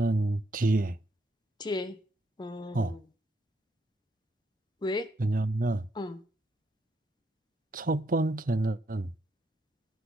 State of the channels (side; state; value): both; normal; correlation 0.76